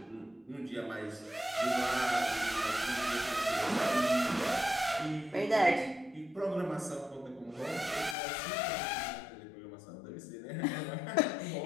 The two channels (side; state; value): right; drops out; at 8.2 s